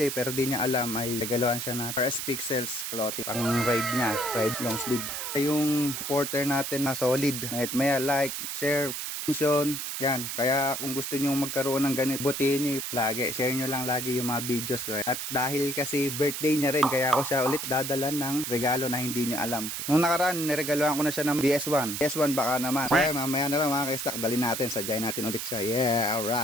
pero di niya alam ay regalohan siya na RS Pixels clothing. Pang ride niya, ride long sleeve. Yung porter natin na solid. Maya like, share, mention, yan. Kaya kung gusto nyo magkaroon ng ganito, butihin nyo lagi. Share nyo lang lagi yung mga videos ko. At dahil kasi birthday niya rin, kaya ako siya ulit dadalan ng regalo na hindi nyo alam. Nung nakaraan, niregalohan ko na siya ng BS1. BS1 baka naman. Kaya mamaya na lang mga ka-stock, dali natin, sadyain natin ulit siya. Yeah,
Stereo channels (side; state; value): right; noise; hiss, 4 dB below the sound